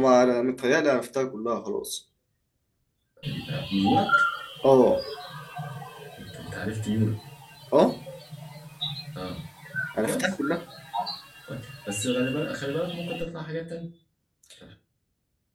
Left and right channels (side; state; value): both; identical; correlation 1.00